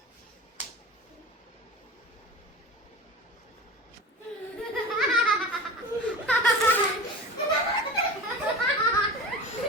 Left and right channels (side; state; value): both; normal; correlation 0.32